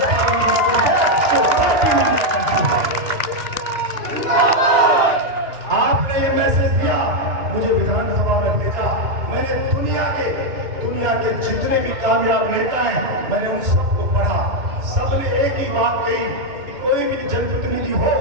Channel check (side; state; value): left; late; 2.9 ms